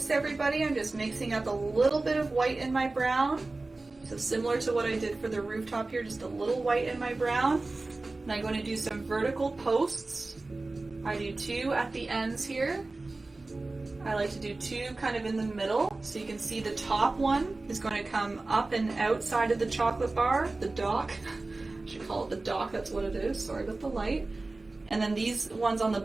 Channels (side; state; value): left; quieter; 3.2 dB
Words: everybody, I'm just mixing up a little bit of white in my brown. So similar to what I did for the rooftop here, just a little white in my brown. And I'm going to do some vertical posts. I do 2 at the ends here. I like to do 2 kind of in the middle. So you can see the top one is going to come up and outside of the chocolate bar, the dock. I should call it the dock, that's what it is. Sorry about the light. And then these ones on the